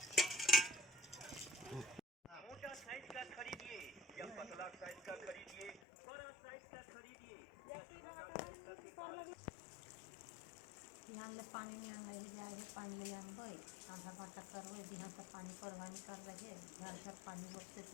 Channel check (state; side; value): drops out; right; at 5.8 s